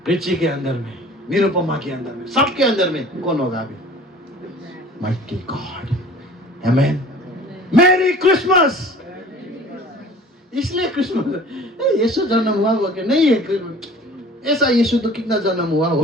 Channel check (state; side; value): normal; both; correlation 0.46